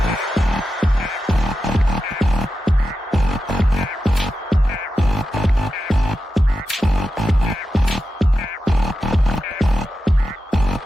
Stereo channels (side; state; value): both; normal; correlation 0.91